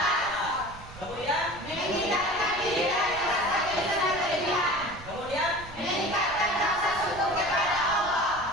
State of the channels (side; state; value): right; noise; rumble, 17 dB below the sound